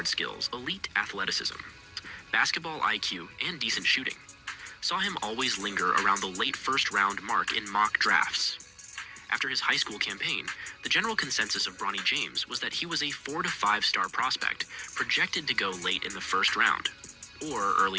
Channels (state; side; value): identical; both; correlation 1.00